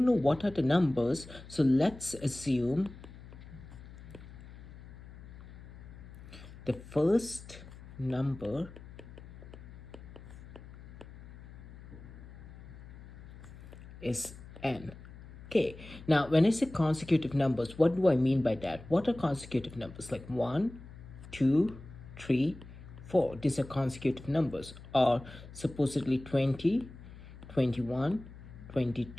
know what are the numbers. So let's assume the first number is n. Okay, now when I say consecutive numbers, what do I mean by that? What are consecutive numbers? Like 1, 2, 3, 4. These are consecutive numbers. Or supposedly 20, 21,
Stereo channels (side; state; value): left; noise; hum, 16 dB below the sound